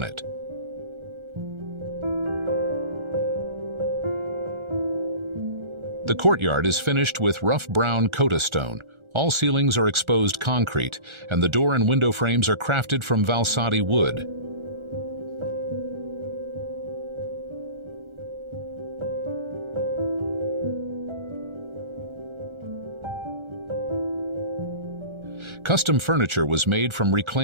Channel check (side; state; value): left; late; 1.4 ms